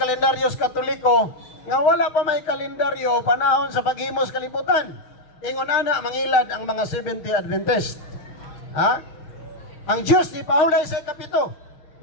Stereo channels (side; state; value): right; late; 6.3 ms